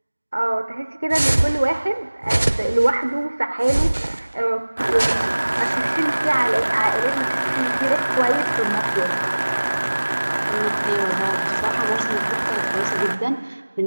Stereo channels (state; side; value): inverted; both; correlation -1.00